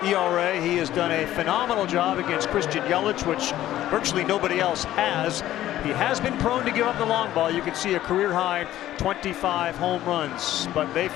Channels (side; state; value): right; quieter; 13.5 dB